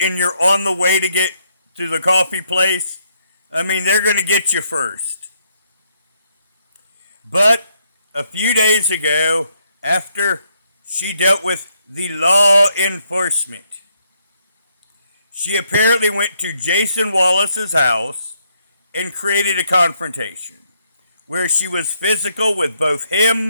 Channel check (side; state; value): both; inverted; correlation -0.74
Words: you're on the way to get to the coffee place, they're going to get you first. But a few days ago, after she dealt with the law enforcement, she apparently went to Jason Wallace's house and created a confrontation where she was physical with both him